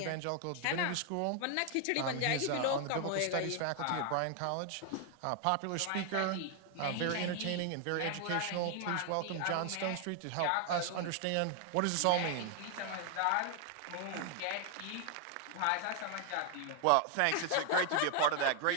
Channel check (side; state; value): both; different; correlation 0.00